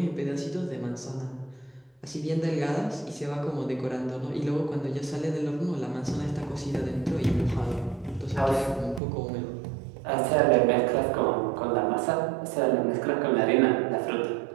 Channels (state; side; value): drops out; left; at 9.0 s